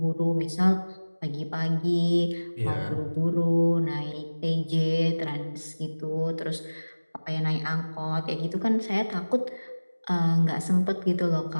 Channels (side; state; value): both; inverted; correlation -1.00